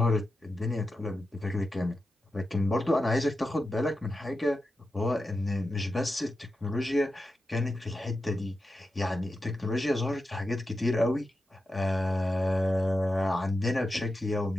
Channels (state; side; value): normal; both; correlation 0.90